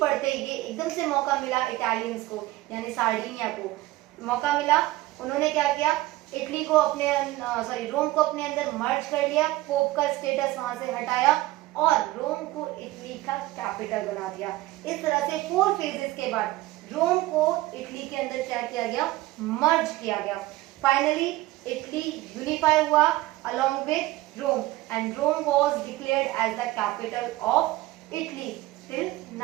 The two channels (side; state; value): left; quieter; 17.7 dB